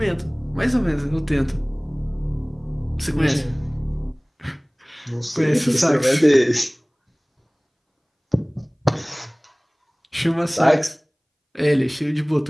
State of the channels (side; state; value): both; identical; correlation 1.00